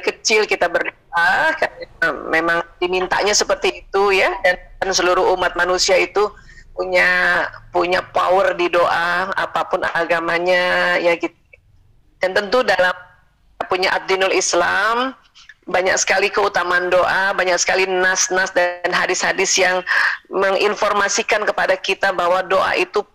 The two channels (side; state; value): both; identical; correlation 1.00